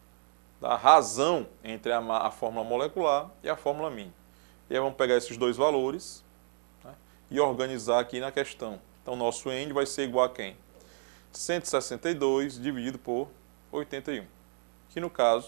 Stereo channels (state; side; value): silent; left; digital silence